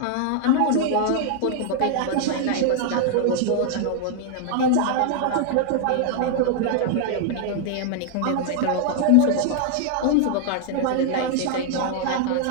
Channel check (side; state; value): both; different; correlation 0.00